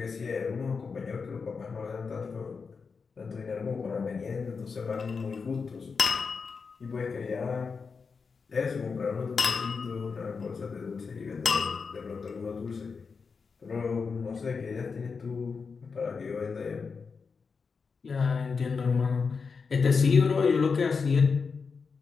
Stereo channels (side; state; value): right; quieter; 5.2 dB